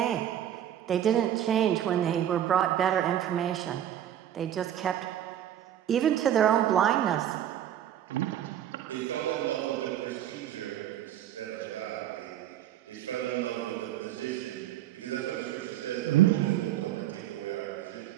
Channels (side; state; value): left; quieter; 11.1 dB